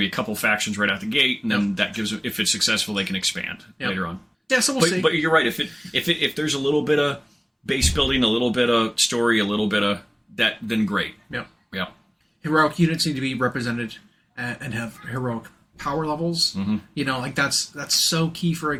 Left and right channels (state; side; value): identical; both; correlation 1.00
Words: be a couple factions right out the gate, and then that gives, if it's successful, they can expand later on. Yeah, so we'll see. But you're right. If there's a little bit of base building, a little bit of story, a little bit of that, then great. Yeah. Yeah. Heroic units need to be represented and have heroic power levels. You know, like that's so key for a